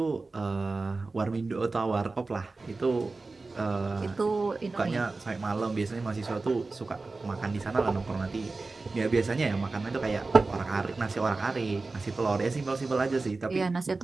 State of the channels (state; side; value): quieter; left; 3.6 dB